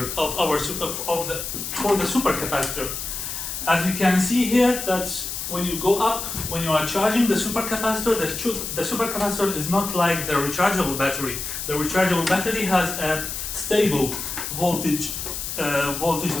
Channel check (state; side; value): noise; left; hiss, 5 dB below the sound